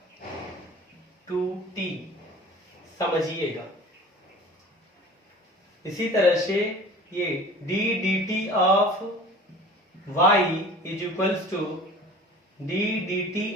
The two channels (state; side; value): normal; both; correlation 0.43